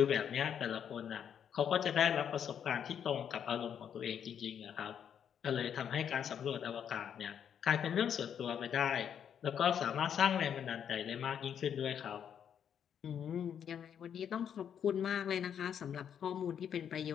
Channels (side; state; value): right; quieter; 8.5 dB